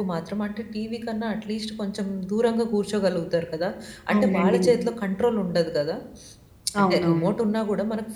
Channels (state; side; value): identical; both; correlation 1.00